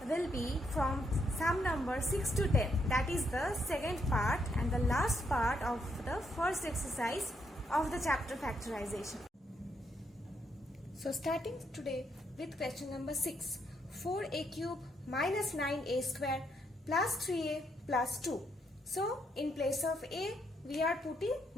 will be from sum number 6 to 10. That is the second part and the last part of the first exercise of the chapter factorization. So starting today with question number 6, 4a cube minus 9a square plus 3a plus 2. So in place of a we are putting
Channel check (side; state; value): both; normal; correlation 0.76